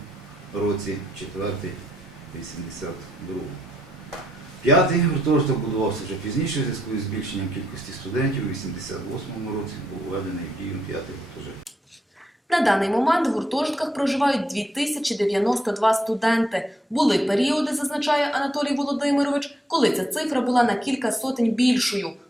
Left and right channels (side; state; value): both; normal; correlation 0.77